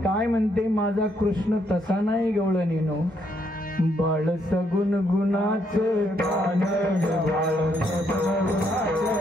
म्हणते माझा कृष्ण तसा नाही गवळणीनो. बाळ सगुण गुणाचं बाळ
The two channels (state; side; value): normal; both; correlation 0.74